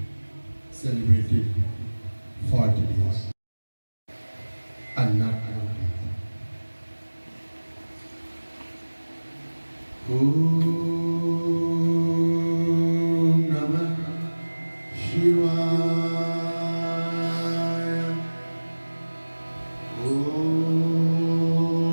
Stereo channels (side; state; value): both; inverted; correlation -1.00